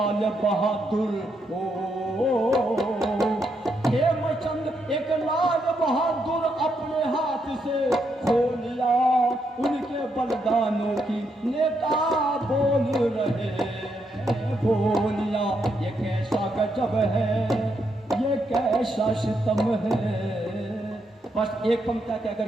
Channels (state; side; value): normal; both; correlation 0.79